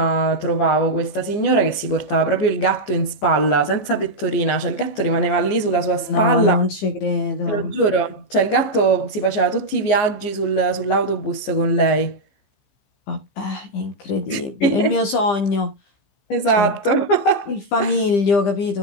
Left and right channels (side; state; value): right; late; 14 ms